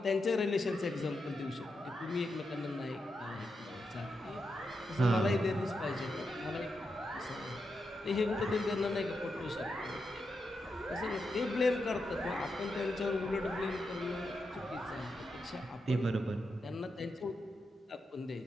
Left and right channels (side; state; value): both; normal; correlation 0.86